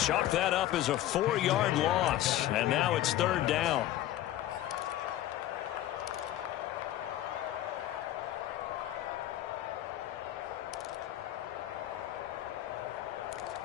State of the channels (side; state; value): right; quieter; 13.6 dB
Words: that up as a 4-yard loss. And now it's 3rd down.